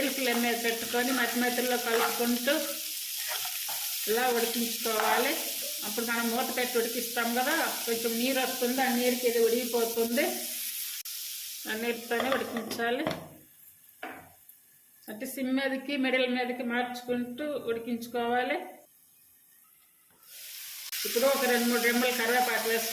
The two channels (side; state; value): both; identical; correlation 1.00